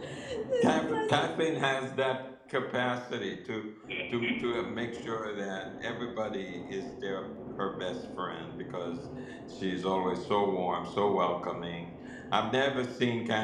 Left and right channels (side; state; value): both; identical; correlation 1.00